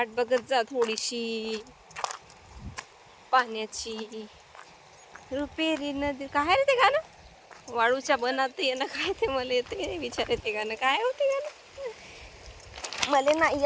बघत जा थोडीशी पाण्याची. रुपेरी नदी, काय रे ते गाणं? वाळूच्या बनात ये ना, काय ते मला येते विचार येते गाणं, काय होते गाणं? मले नाही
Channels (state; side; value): identical; both; correlation 1.00